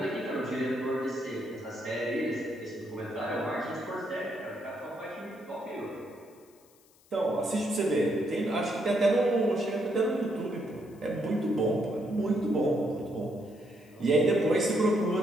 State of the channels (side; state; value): left; noise; hiss, 30 dB below the sound